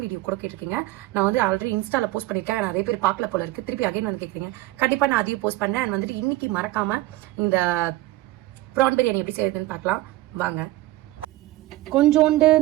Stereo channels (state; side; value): quieter; left; 17.3 dB